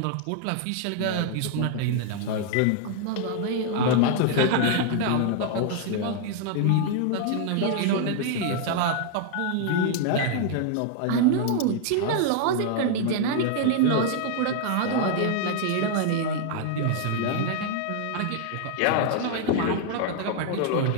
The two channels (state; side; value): different; both; correlation 0.00